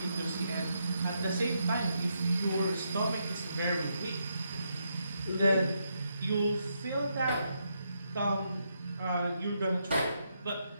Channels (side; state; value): both; inverted; correlation -0.80